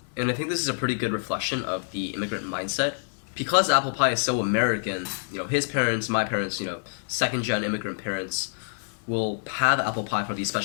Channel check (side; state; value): right; silent; digital silence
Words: And I think this is a pretty good reflection of the immigrant mindset. Because apple pie is so American, you know, his parents, my parents, you know, second-gen immigrant parents will have apple pie for these